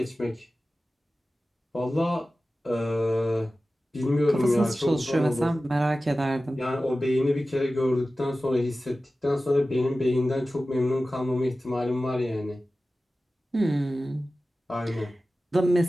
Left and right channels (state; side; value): normal; both; correlation 0.95